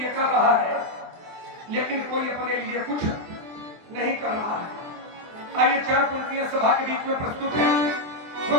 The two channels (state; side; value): late; left; 24 ms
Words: कर रहा है, लेकिन कोई अपने लिए कुछ नहीं कर रहा है। आइए चार पंक्तियां सभा के बीच में प्रस्तुत है।